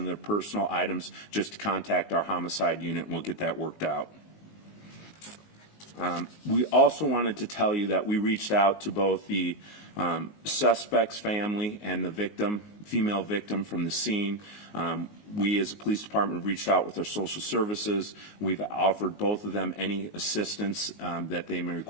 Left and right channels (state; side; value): late; right; 19 ms